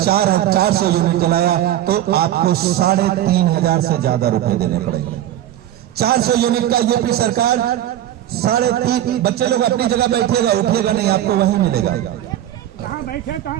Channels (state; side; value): quieter; left; 12.5 dB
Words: यूनिट जलाया तो आपको 3,500 से ज्यादा रुपए देने पड़ेंगे। 400 यूनिट का यूपी सरकार 3.5, बच्चे लोग अपनी जगह बैठेगा, उठेगा नहीं, आपको वहीं मिलेगा,